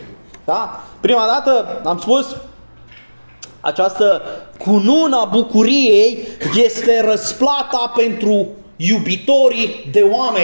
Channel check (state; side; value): inverted; both; correlation -1.00